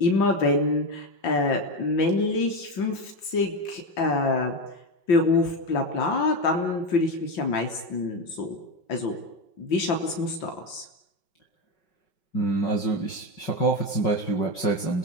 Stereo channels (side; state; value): right; late; 5.9 ms